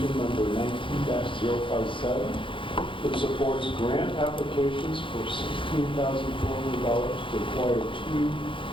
number 19-057 that supports grant applications for $16,400 to acquire 2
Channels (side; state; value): right; late; 0.25 ms